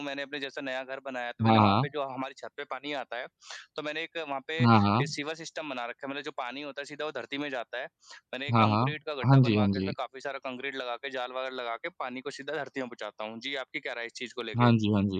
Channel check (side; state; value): both; identical; correlation 1.00